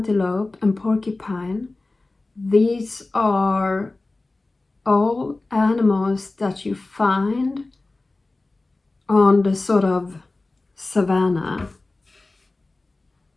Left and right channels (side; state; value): right; quieter; 3.2 dB